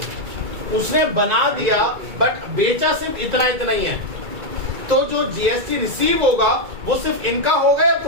उसने बना दिया बट बेचा सिर्फ इतना इतना ही है। तो जो जीएसटी रिसीव होगा वो सिर्फ इनका होगा या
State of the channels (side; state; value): left; late; 2.3 ms